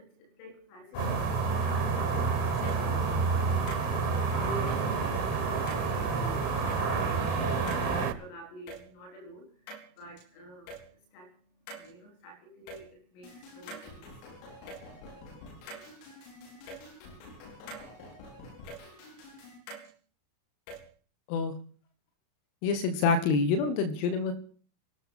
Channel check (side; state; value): right; late; 33 ms